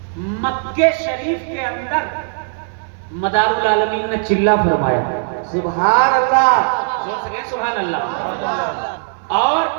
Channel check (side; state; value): left; silent; 58 dB below the other